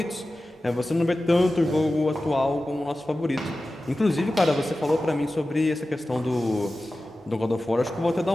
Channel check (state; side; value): normal; both; correlation 0.95